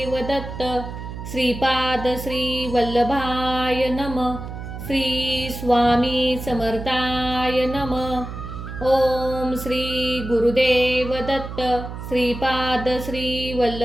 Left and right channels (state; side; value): noise; right; hum, 9 dB below the sound